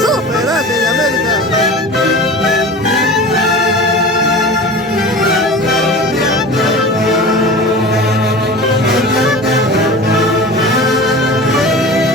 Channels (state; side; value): normal; both; correlation 0.35